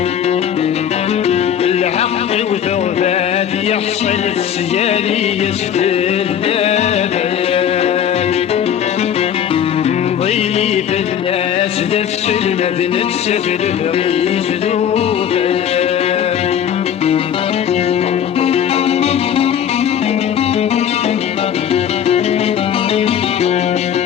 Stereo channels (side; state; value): right; quieter; 9.1 dB